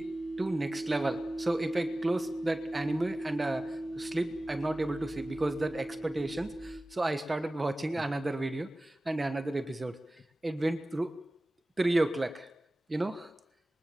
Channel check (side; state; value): both; normal; correlation 0.97